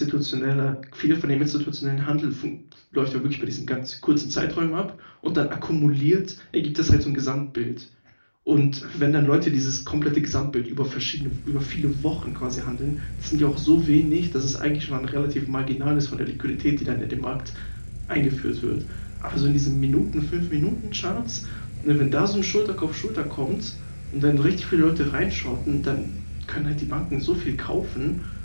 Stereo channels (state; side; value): inverted; both; correlation -1.00